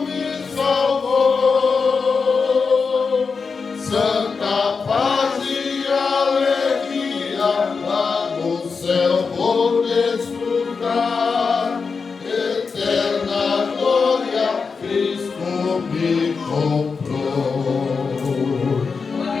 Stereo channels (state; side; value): quieter; right; 5.1 dB